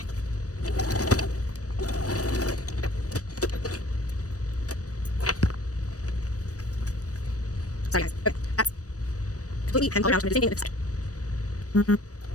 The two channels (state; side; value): late; right; 0.66 ms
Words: Sorry guys. Okay. That's completely hemmed all around. So I'm going to do the same thing on this side.